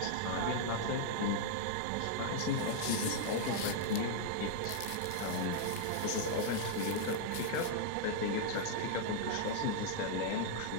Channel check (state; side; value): different; both; correlation -0.01